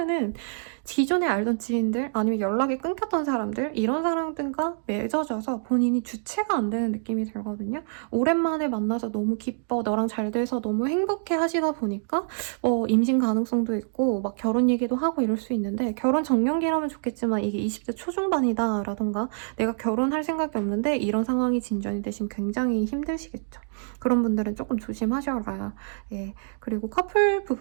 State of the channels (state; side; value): silent; left; digital silence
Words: 기존에 알던 지인들 아니면 연락이 끊겼던 사람들 이런 사람들과 맺어져서 본인이 주체가 안 되는 느낌이 들거든요. 오랜만에 만나서 너무 기뻐 너랑 잘 돼서 너무 행복해 하시다 보니까 임신 가능성도 있고 막 결혼 얘기도 하고 이럴 수 있는데 결혼 정년기라면 좋겠지만 이게 20대 초중반이다 라던가 내가 결혼할 생각이 없는데 이런 상황이 진전이 되시면 굉장히 힘드시겠죠. 그런 분들은 조금 조심하셔라. 예. 그리고 커플